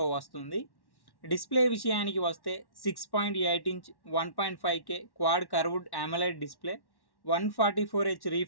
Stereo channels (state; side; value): late; right; 1.1 ms